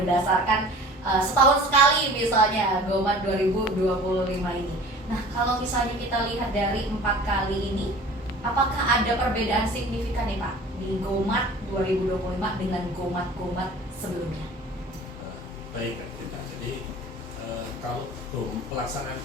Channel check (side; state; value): both; normal; correlation 0.44